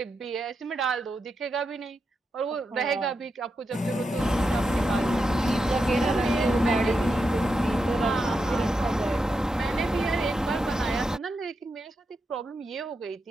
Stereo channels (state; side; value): normal; both; correlation 0.86